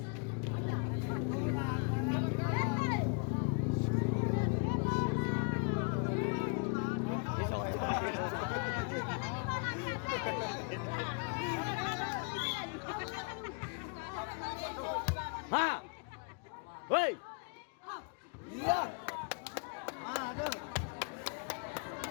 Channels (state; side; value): quieter; right; 37.6 dB